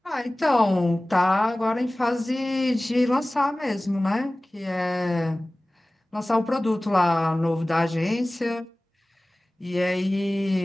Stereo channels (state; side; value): normal; both; correlation 0.98